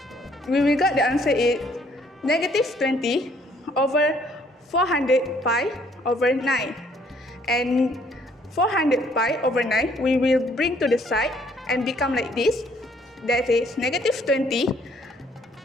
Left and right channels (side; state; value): both; normal; correlation 0.64